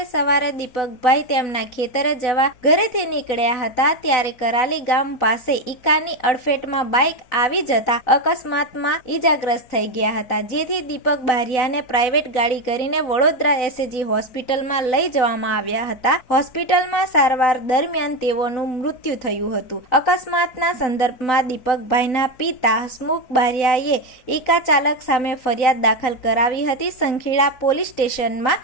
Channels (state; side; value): late; right; 4.0 ms